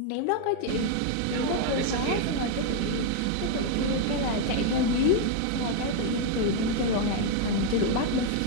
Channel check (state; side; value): different; both; correlation 0.00